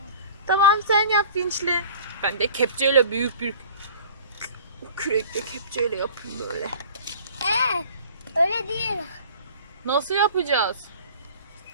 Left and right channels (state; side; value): inverted; both; correlation -0.45